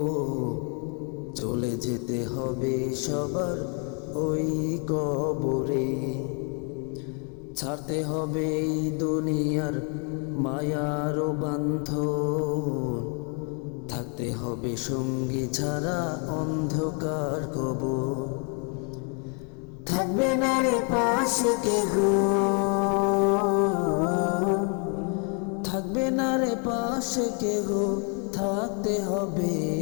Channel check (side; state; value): right; quieter; 38.4 dB